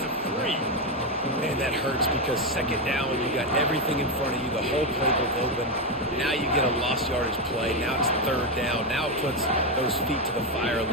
of 3. Man, that hurts because 2nd down, you got everything in front of you, the whole playbook open. Now you get a lost yardage play. Now it's 3rd down. Now it puts those feet to the fire a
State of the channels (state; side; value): normal; both; correlation 0.08